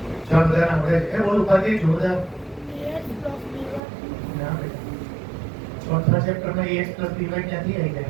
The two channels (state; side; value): drops out; left; at 3.8 s